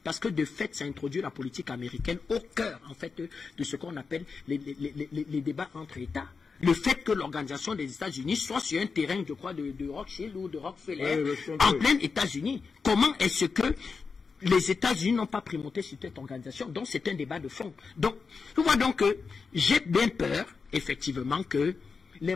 Parce que de fait, ça introduit la politique américaine au cœur en fait de ce qu'on appelle les débats entre États. Le fait que l'organisation des États-Unis soit sur un terrain, je crois, de Rothschild ou de Rockefeller, en plein États-Unis. Comment est-ce que les États-Unis n'ont pas primauté sur cette organisation? Donc c'est un débat de fond. Donc, je vois donc que j'ai bien peur, effectivement, que les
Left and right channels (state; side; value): quieter; right; 5.0 dB